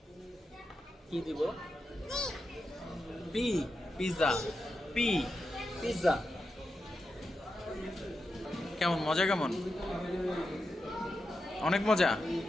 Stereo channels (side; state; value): both; normal; correlation 0.88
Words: কি দিব? P pizza. P pizza. কেমন মজা? কেমন? অনেক মজা।